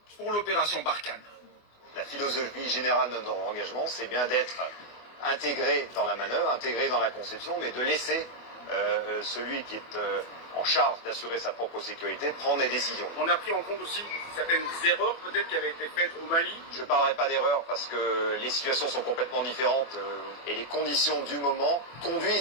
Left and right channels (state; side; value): late; right; 24 ms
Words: pour l'opération Barkhane. La philosophie générale de notre engagement, c'est bien d'être intégré dans la manœuvre, intégré dans la conception, mais de laisser celui qui est en charge d'assurer sa propre sécurité, prendre des décisions. On a pris en compte aussi certaines erreurs peut-être qui avaient été faites au Mali. Je ne parlerai pas d'erreur parce que les situations sont complètement différentes et les conditions du moment